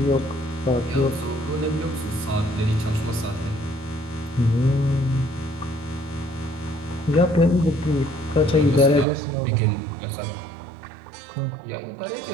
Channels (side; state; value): left; drops out; at 9.1 s